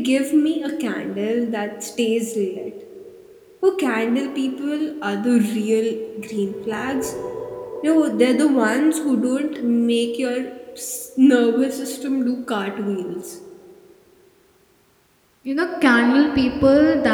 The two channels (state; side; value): identical; both; correlation 1.00